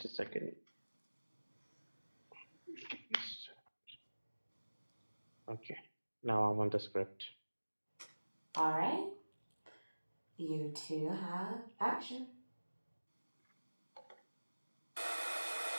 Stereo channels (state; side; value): inverted; both; correlation -1.00